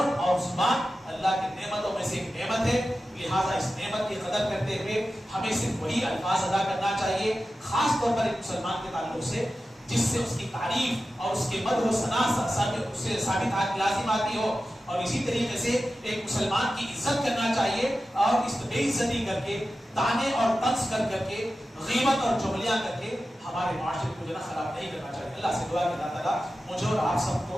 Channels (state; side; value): normal; both; correlation 0.93